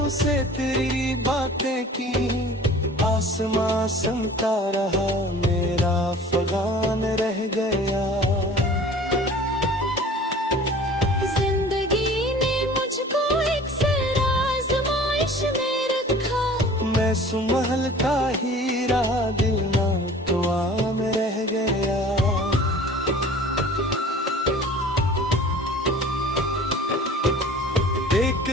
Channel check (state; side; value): normal; both; correlation 0.45